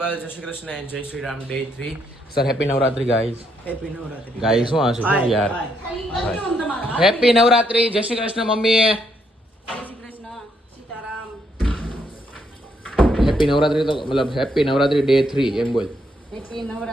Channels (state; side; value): normal; both; correlation 0.74